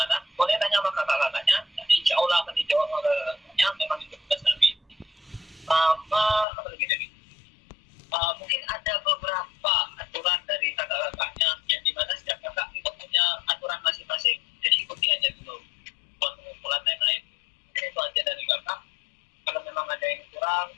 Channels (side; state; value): right; drops out; at 6.5 s